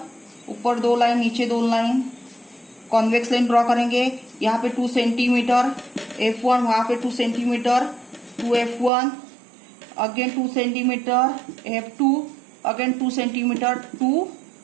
ऊपर 2 लाइन, नीचे 2 लाइन, कॉन्वेक्स लाइन ड्रॉ करेंगे। यहाँ पे 2 सेंटीमीटर F1, वहां पे 2 centimetre 2F1, again 2 centimeter f2, again 2 centimeter 2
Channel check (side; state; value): left; drops out; at 8.9 s